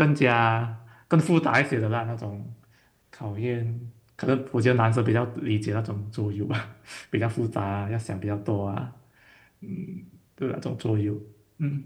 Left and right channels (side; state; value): both; identical; correlation 1.00